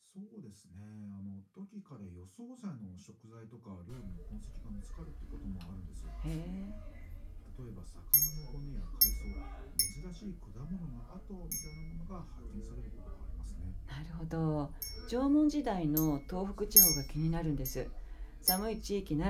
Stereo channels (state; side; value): identical; both; correlation 1.00